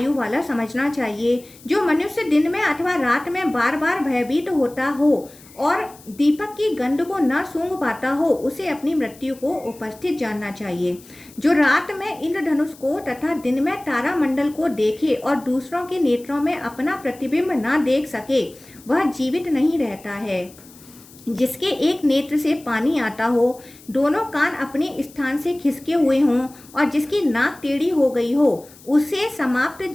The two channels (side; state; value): left; noise; hiss, 23 dB below the sound